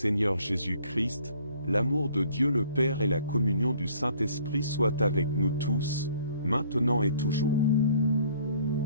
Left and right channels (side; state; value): both; inverted; correlation -0.57